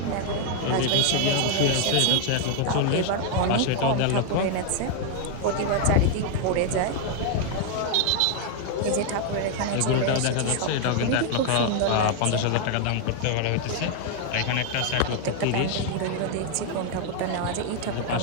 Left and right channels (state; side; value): different; both; correlation 0.00